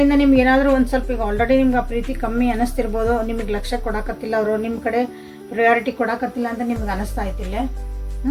ನಿಮ್ಗೆ ಏನಾದರೂ ಒಂದು ಸ್ವಲ್ಪ ಈಗ ಆಲ್ರೆಡಿ ನಿಮ್ಗೆ ಆ ಪ್ರೀತಿ ಕಮ್ಮಿ ಅನ್ನಿಸ್ತಿರ್ಬೋದು, ನಿಮಗೆ ಲಕ್ಷ್ಯ ಕೊಡಕತ್ತಿಲ್ಲ, ಅವರು ನಿಮ್ಮ ಕಡೆ ಪ್ರಯಾರಿಟಿ ಕೊಡಕತ್ತಿಲ್ಲ ಅಂತ ನಿಮ್ಗೆ ಅನ್ನಿಸ್ತಾ ಐತಿಲ್ಲ.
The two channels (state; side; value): identical; both; correlation 1.00